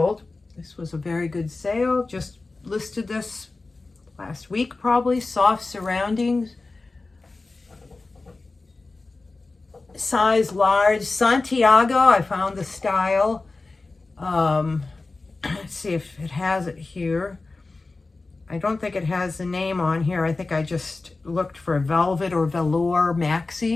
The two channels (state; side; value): quieter; right; 3.5 dB